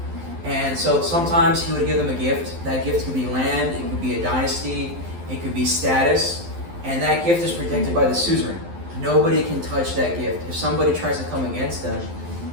And so sometimes he would give them a gift. That gift could be land, it could be a dynasty, it could be status. And that gift is protected by the suzerain. Nobody can touch that gift. If somebody tries to come against them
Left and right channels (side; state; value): left; late; 12 ms